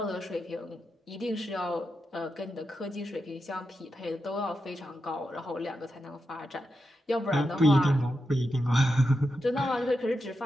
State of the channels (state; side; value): normal; both; correlation 0.88